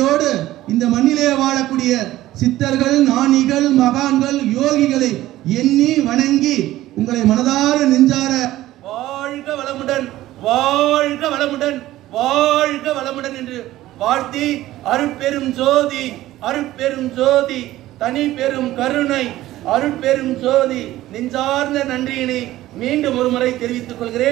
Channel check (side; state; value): left; quieter; 15.4 dB